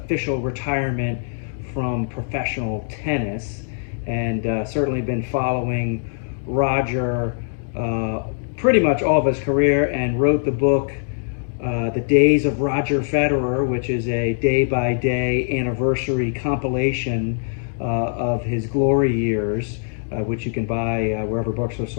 retirement from professional tennis. And certainly been following Roger pretty much all of his career, and wrote the book The Days of Roger Federer, which is a day-by-day anniversary compilation of his glory years, which you can buy wherever books are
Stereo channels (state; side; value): silent; right; digital silence